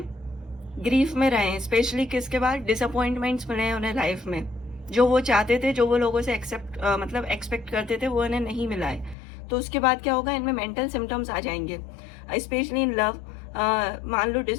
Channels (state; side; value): drops out; right; at 9.2 s